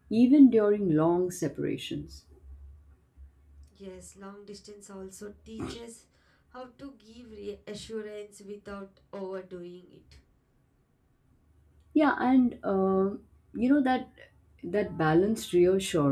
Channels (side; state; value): both; identical; correlation 1.00